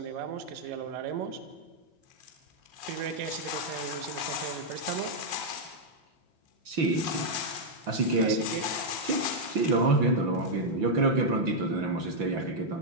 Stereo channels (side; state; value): left; late; 6.0 ms